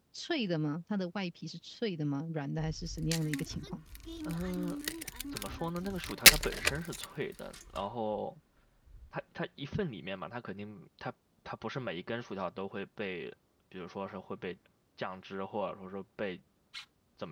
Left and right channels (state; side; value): identical; both; correlation 1.00